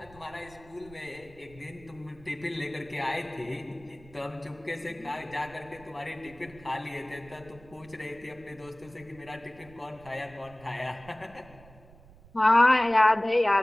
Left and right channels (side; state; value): right; noise; rumble, 22 dB below the sound